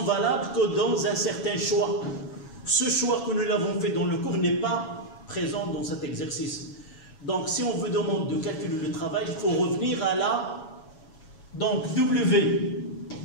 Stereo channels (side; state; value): right; late; 7.2 ms